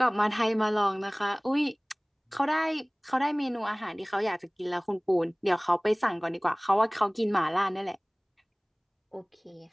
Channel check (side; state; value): both; identical; correlation 1.00